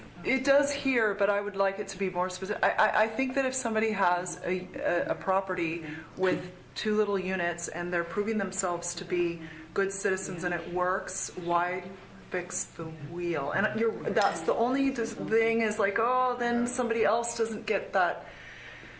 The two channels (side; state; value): both; identical; correlation 1.00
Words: It does here, but I would like it to be more specific. I think that if somebody has a property with 2 little units and they're proving themselves to be good citizens and it works, why fix the wheel? And that's the only thing is like, oh, then somebody else doesn't get that,